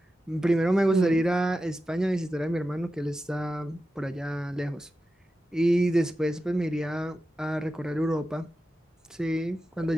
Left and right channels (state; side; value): normal; both; correlation 0.92